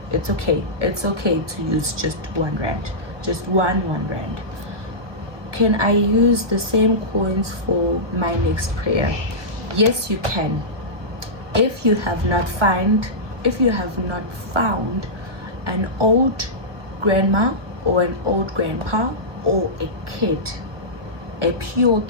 It's okay. It's okay to use just 1 rand, just one rand. Can I use the same coins for my next prayer? Yes, you can. If you have not found an old grandma or an old grandpa or a kid, a pure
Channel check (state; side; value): late; left; 1.0 ms